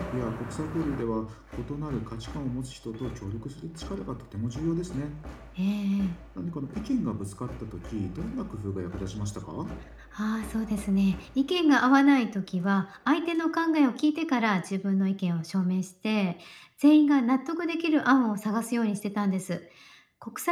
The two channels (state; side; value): identical; both; correlation 1.00